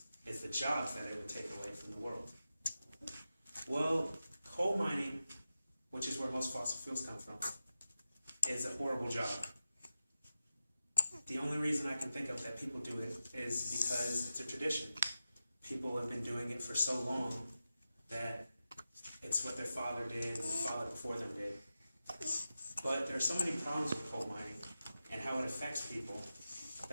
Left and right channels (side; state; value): both; inverted; correlation -0.92